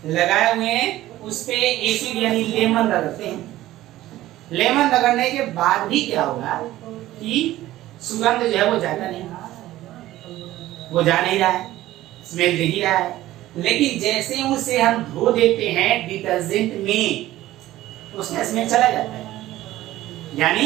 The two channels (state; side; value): quieter; left; 15.3 dB